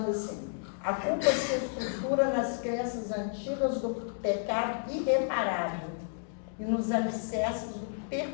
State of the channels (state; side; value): silent; right; digital silence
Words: assim: a culpa se estrutura nas crenças antigas do pecado irreparável e nos alicerces do